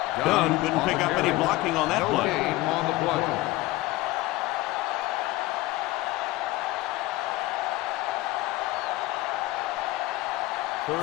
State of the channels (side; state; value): right; quieter; 18.6 dB